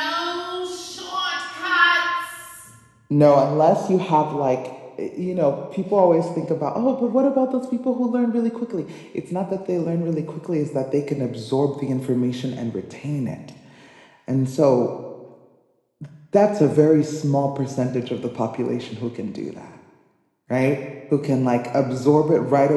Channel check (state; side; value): identical; both; correlation 1.00